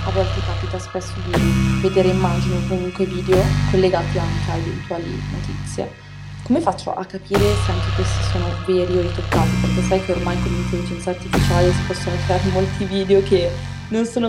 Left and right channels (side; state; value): both; identical; correlation 1.00